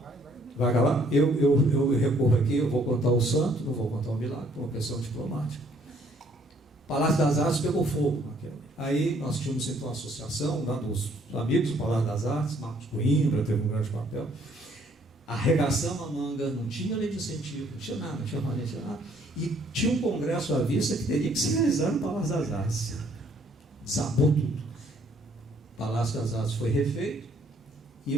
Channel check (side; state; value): both; normal; correlation 0.64